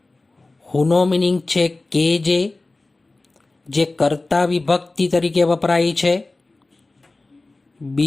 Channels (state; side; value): quieter; right; 3.2 dB